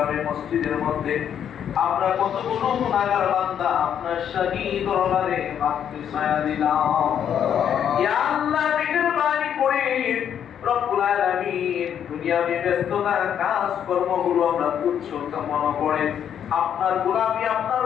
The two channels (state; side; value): quieter; right; 9.0 dB